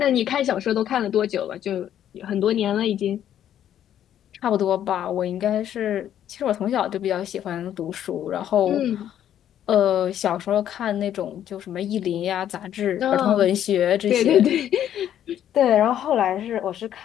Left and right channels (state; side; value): quieter; right; 10.6 dB